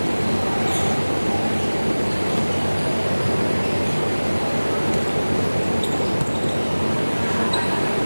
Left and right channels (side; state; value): both; inverted; correlation -1.00